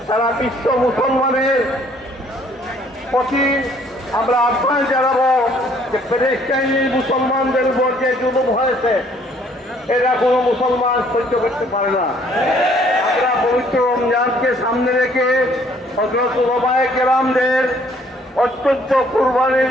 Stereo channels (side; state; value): both; normal; correlation 0.61